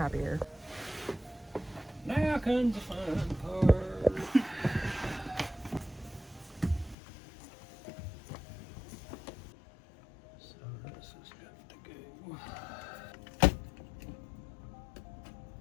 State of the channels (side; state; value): right; drops out; at 7.0 s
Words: Now comes the fun part. So this is good to go.